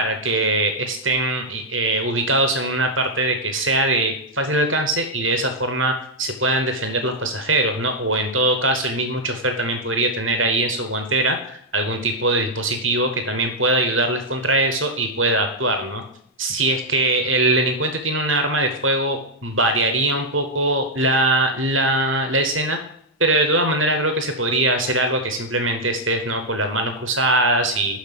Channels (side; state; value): both; normal; correlation -0.04